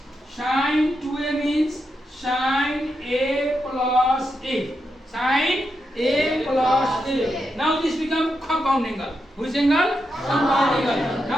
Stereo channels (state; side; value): normal; both; correlation 0.85